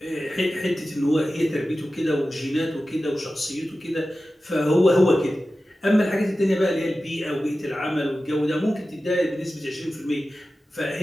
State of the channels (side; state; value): both; normal; correlation 0.94